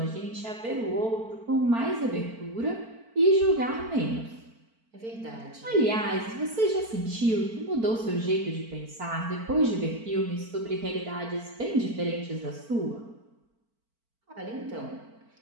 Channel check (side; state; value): left; late; 4.5 ms